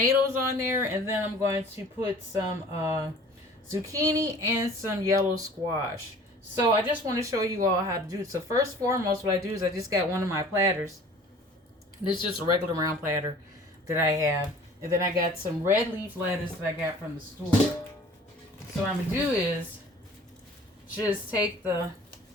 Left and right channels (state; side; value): normal; both; correlation 0.47